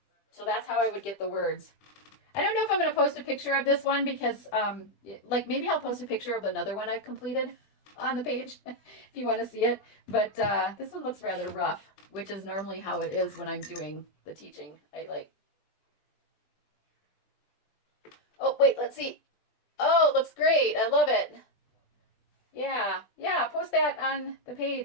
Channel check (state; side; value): late; right; 20 ms